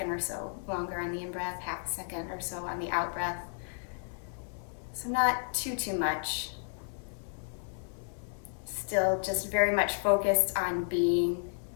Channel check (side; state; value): right; silent; 56 dB below the other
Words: or so longer on the in-breath, half a second or so on the out-breath. So not too much. Still just very much focused on being,